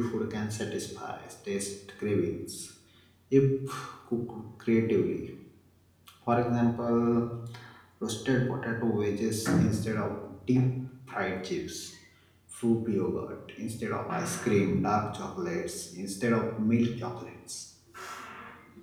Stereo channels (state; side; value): identical; both; correlation 1.00